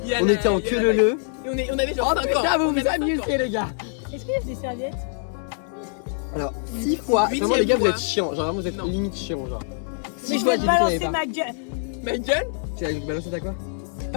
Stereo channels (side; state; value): right; silent; 62 dB below the other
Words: Il y a on la- était en il y a que la- le. Et on avait genre Oh 5 ans. putain, vous On vous avait 5 ans. amusez les gars! Est-ce qu'il y a des serviettes? Alors, 6 fois, vraiment les gars, vous fois. êtes chiants, genre vraiment vous êtes Non. limite chiants, genre. Mais 6 je fois, vais j'ai te dit qu'il y balancer avait pas. ma gueule. Ma gueule? Tu as balancé ta quoi?